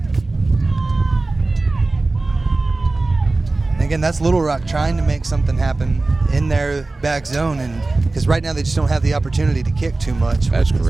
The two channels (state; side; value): quieter; left; 3.2 dB